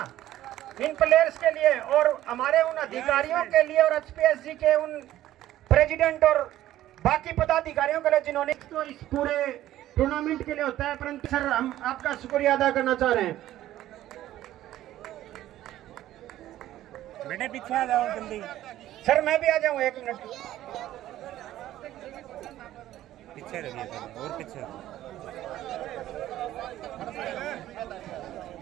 इन प्लेयर्स के लिए और हमारे उन अधिकारियों के लिए और HPSG के उन प्रेसिडेंट और बाकी पदाधिकारियों के लिए जिन्होंने तो इस पूरे टूर्नामेंट के लिए होता है। परंतु सर हम आपका शुक्रिया अदा करना चाह रहे हैं। बेटे पीछे आ जाओ जल्दी। सर मैं भी आ जाऊं 1 मिनट। पीछे रहिए सर, और पीछे।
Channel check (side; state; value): left; quieter; 13.8 dB